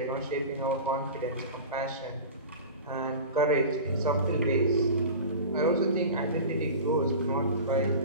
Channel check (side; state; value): both; inverted; correlation -0.33